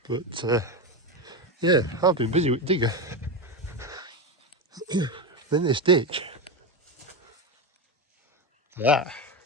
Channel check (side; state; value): both; normal; correlation 0.15